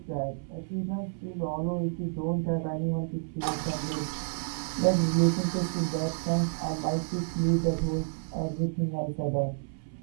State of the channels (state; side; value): silent; left; 58 dB below the other